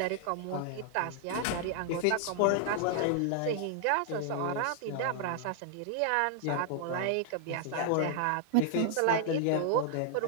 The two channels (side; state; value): both; different; correlation 0.00